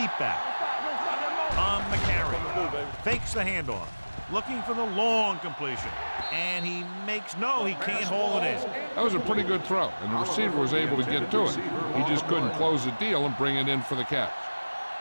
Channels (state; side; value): inverted; both; correlation -1.00